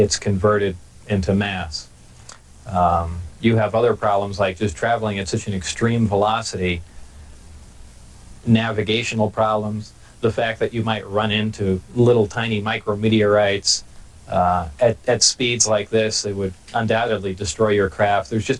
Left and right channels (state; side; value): identical; both; correlation 1.00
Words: converted into mass. You have other problems like just traveling at such an extreme velocity, navigational problems, the fact that you might run into little tiny micrometeorites at speeds like this. They would undoubtedly destroy your craft. There's